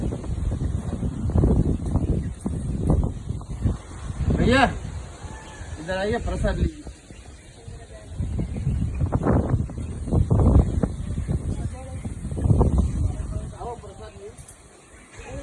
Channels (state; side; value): identical; both; correlation 1.00